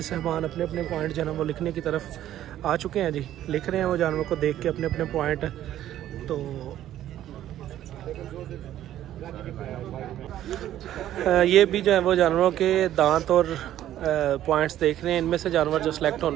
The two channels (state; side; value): quieter; left; 12.4 dB